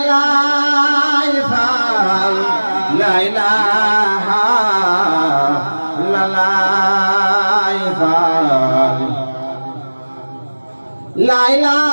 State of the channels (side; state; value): both; inverted; correlation -1.00